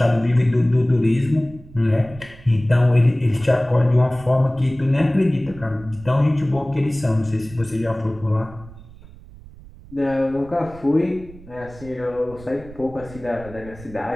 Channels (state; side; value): noise; right; rumble, 19 dB below the sound